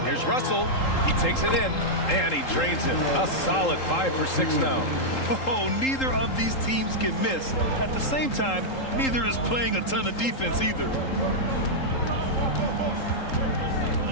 Here's Russell. He takes it in, and he drains it. A solid 5 for 6 now. Oh, neither of these teams can miss. At the same time, neither is playing a ton of defense either.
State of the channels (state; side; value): late; right; 3.8 ms